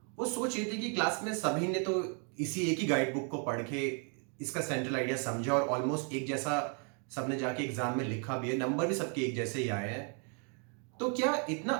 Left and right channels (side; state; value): left; quieter; 39.8 dB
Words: वो सोच ये थी कि क्लास में सभी ने तो इसी एक ही गाइड बुक को पढ़ के इसका सेंट्रल आइडिया समझा और ऑलमोस्ट एक जैसा सबने जाके एग्जाम में लिखा भी है, नंबर भी सबके एक जैसे ही आए हैं। तो क्या इतना